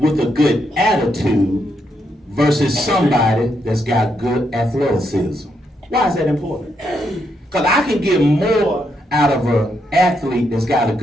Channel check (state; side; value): normal; both; correlation 0.79